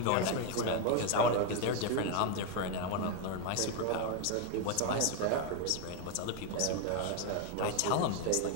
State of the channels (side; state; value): both; different; correlation 0.01